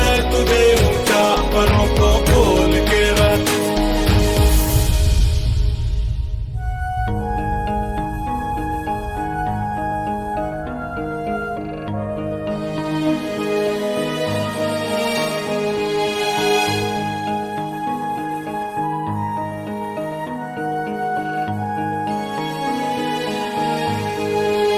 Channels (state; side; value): identical; both; correlation 1.00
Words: तुझे ऊंचा, परों को खोल के रख।